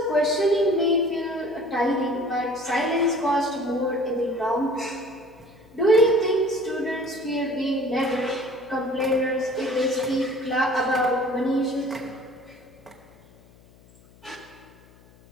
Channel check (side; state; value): left; noise; hum, 26 dB below the sound